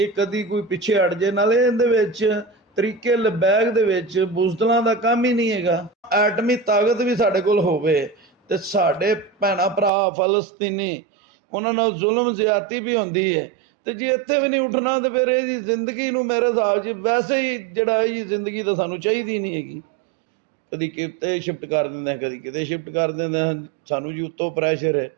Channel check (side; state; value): left; drops out; at 9.9 s